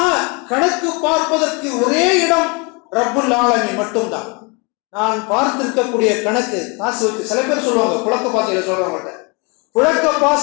கணக்கு பார்ப்பதற்கு ஒரே இடம் ரப்புல் ஆலமீன் மட்டும்தான். நான் பார்த்திருக்கக்கூடிய கணக்கு காசு வச்சு, சில பேர் சொல்லுவாங்க புழக்க பாசைகளை சொல்றவங்கள்ட்ட, புழக்க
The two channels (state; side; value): quieter; right; 30.8 dB